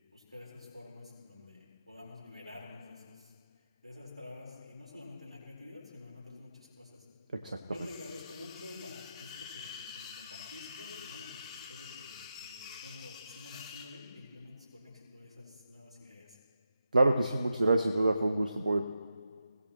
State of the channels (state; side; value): inverted; both; correlation -0.88